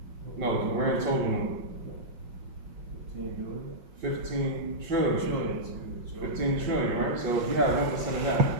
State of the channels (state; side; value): late; left; 5.5 ms